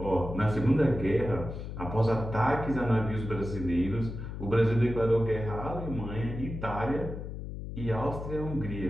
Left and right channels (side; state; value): left; noise; hum, 8 dB below the sound